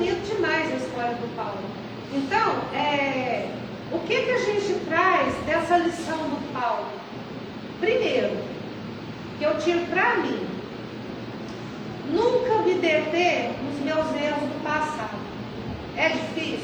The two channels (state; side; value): identical; both; correlation 1.00